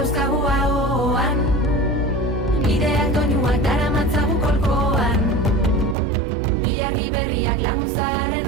ahoan, bideak doinuak daramatzagu kolkoan, ilargi berriak laguntzaren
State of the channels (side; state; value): left; drops out; at 6.0 s